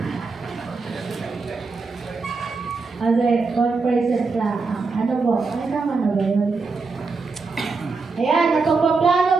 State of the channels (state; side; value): quieter; left; 4.2 dB